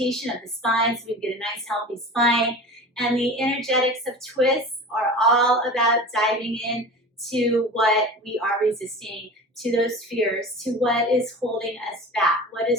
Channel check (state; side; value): normal; both; correlation 0.35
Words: of the spine so we get a nice healthy spine. And the energetics of twists are all about diving in to what we are resisting, to those fears, to what is holding us back, what